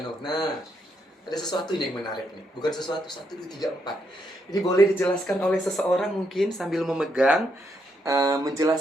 Nah, ada sesuatu yang menarik nih. Bukan sesuatu, 1, 2, 3, 4. Ini boleh dijelaskan oleh seseorang mungkin sambil memegang,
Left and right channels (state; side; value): normal; both; correlation 0.78